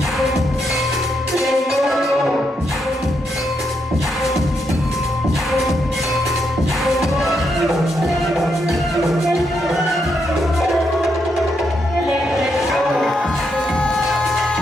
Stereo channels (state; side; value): normal; both; correlation 0.80